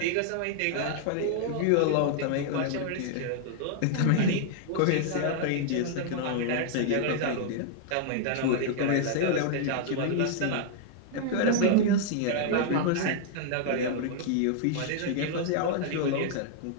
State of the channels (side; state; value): both; different; correlation -0.01